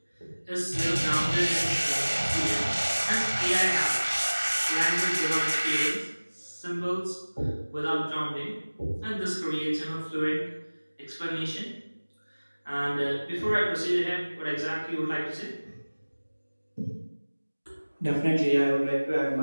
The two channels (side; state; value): both; inverted; correlation -1.00